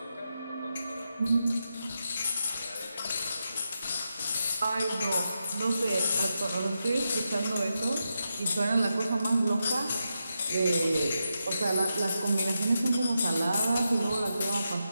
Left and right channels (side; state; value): both; inverted; correlation -0.86